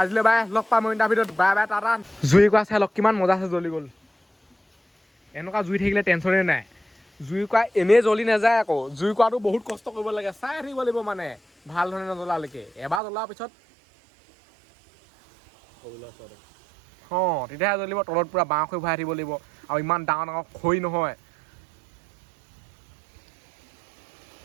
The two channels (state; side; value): drops out; left; at 13.0 s